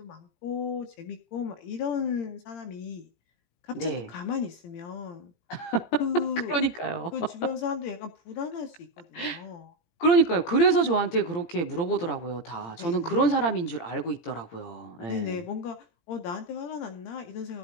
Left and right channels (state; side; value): late; right; 17 ms